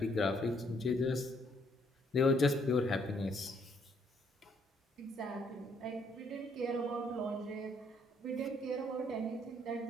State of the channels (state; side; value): normal; both; correlation 0.68